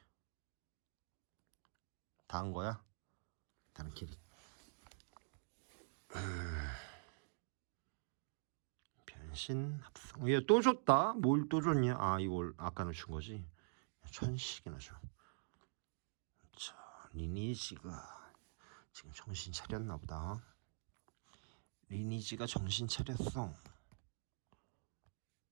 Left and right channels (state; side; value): silent; left; digital silence